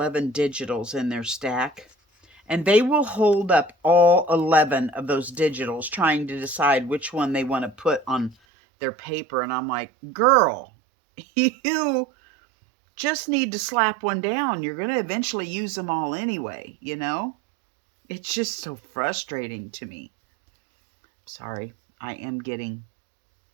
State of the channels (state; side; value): drops out; left; at 8.3 s